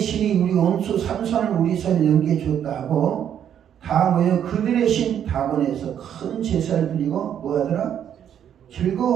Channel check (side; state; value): left; quieter; 9.4 dB